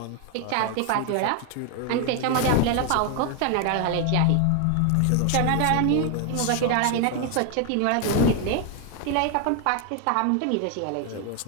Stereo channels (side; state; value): both; different; correlation 0.01